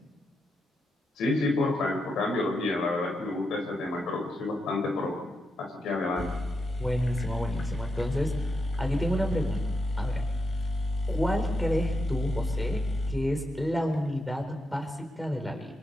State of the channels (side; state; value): both; normal; correlation 0.84